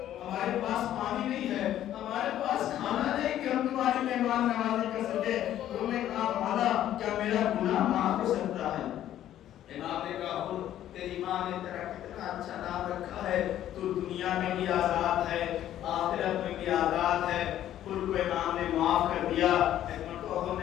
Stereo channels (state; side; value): quieter; right; 12.0 dB